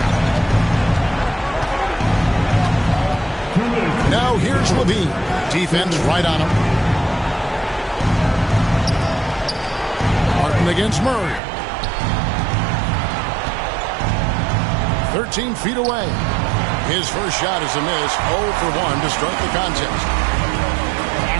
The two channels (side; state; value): left; drops out; at 11.4 s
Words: Now here's Levine. Defense right on him. Martin against Murray. 13 feet away. His first shot is a miss. 0 for 1 to start the contest.